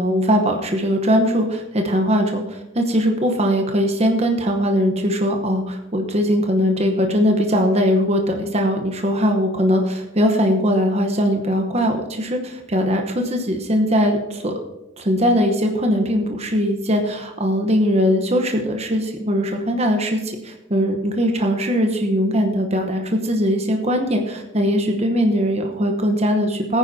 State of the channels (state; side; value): normal; both; correlation 0.56